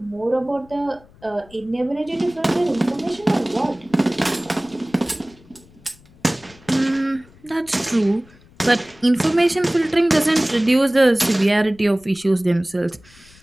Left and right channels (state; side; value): noise; left; rumble, 26 dB below the sound